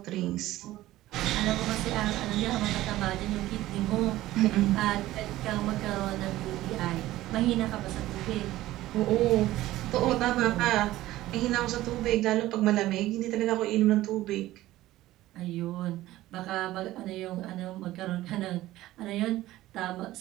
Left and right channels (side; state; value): left; quieter; 15.9 dB